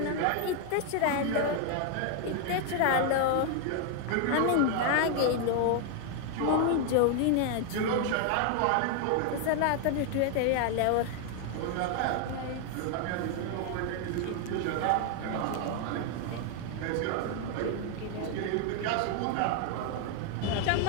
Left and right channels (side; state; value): both; different; correlation 0.00